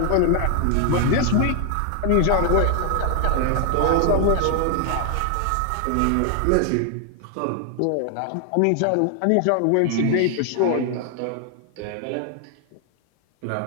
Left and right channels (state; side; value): different; both; correlation 0.00